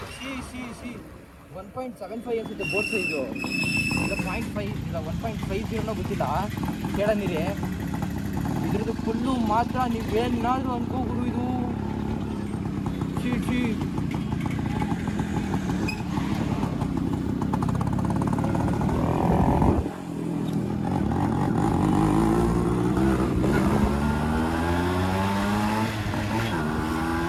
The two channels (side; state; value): both; identical; correlation 1.00